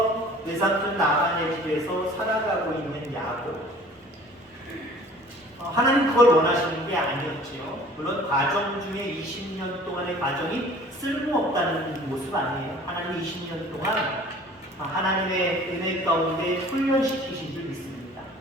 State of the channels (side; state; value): both; normal; correlation 0.49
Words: 외삼촌 라반의 집에서 살아가고 있는 야곱. 하나님 그걸 원하시는 게 아니었지요. 물론 과정 중에 20년 동안의 과정이 쓸모없다는 모습 아니에요. 하나님 20년 동안 하나님의 은혜 가운데 훈련시키신 줄 믿습니다.